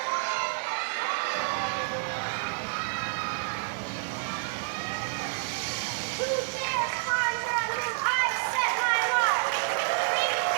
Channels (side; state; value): left; silent; 59 dB below the other